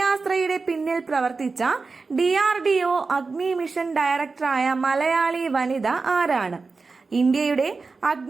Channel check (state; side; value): quieter; left; 4.2 dB